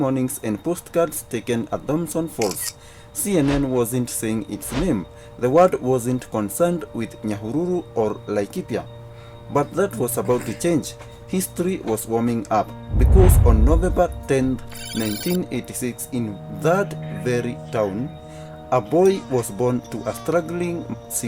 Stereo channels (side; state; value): both; identical; correlation 1.00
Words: and postcards taken at Thompson Falls. CNN wasn't saying its name. The word wasn't concerned with Nyahururu or Laikipia. But that was about to change. History was warming up because on November 10, 1986, in that very town, a boy was born to a struggling